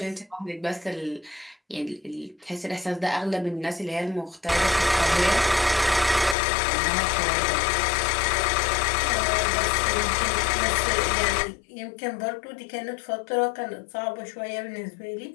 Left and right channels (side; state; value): right; drops out; at 6.4 s